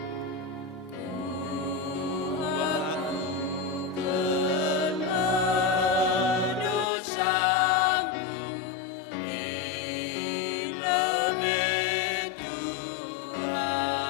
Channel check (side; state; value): right; drops out; at 6.9 s